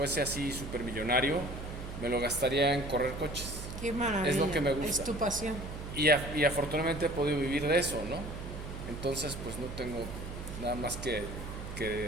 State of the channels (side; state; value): right; noise; hum, 8 dB below the sound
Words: así supermillonario, me lo gastaría en correr coches. Qué maravilla. Es lo que me gusta. Es tu pasión. Y afortunadamente he podido vivir de eso, ¿no? Entonces pues no tengo nada más que